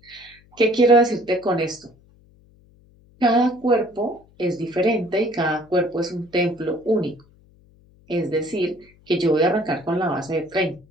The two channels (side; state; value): left; noise; hum, 29 dB below the sound